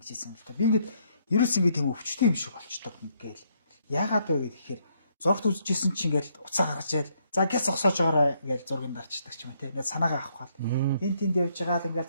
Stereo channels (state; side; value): inverted; both; correlation -0.71